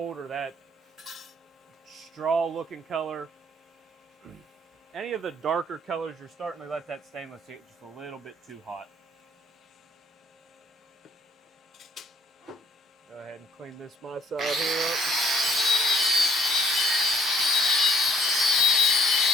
or that straw-looking color. Any of the darker colors, you're starting to let that stainless get just a little bit too hot. Go ahead and clean this my side here up.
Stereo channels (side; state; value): both; normal; correlation 0.63